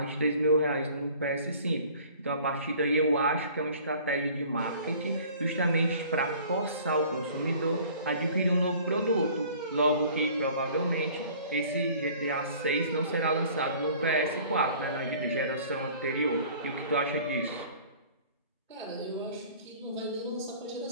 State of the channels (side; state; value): both; inverted; correlation -0.49